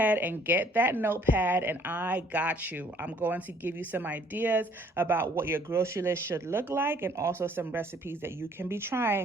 and get that notepad and I got you. I'm going to give you some ideas about what your grocery list should look like and also some recipes that you can be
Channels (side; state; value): both; normal; correlation 0.60